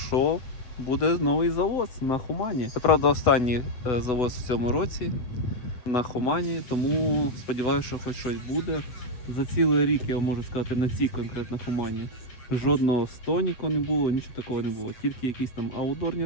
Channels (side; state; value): right; late; 8.1 ms